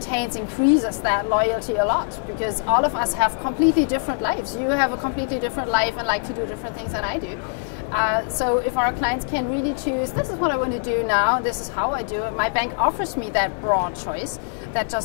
increases that loyalty a lot, because all of us have completely different lives. You have a completely different life and like to do different things than I do. So if our clients can really choose, this is what I want to do now, this is how I do it, my bank offers me that broad choice, that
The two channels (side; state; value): right; silent; 61 dB below the other